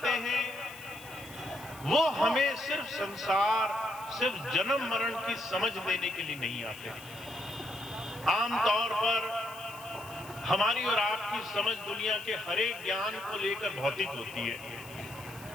हैं वो हमें सिर्फ संसार, सिर्फ जन्म मरण की समझ देने के लिए नहीं आते। आमतौर पर हमारी और आपकी समझ दुनिया के हर एक ज्ञान को लेकर भौतिक होती है।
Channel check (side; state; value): left; noise; hiss, 18 dB below the sound